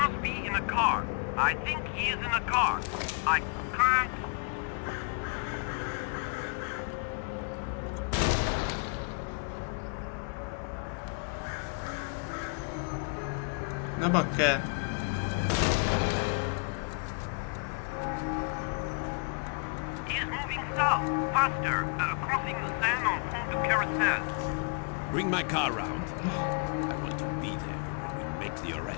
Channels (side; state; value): right; quieter; 37.0 dB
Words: be in a car. I think he is in a car. I can't... Ne bakker! He is moving south, faster, crossing the Seine on Pont du Carousel. Bring my car round. I want to be there when we make the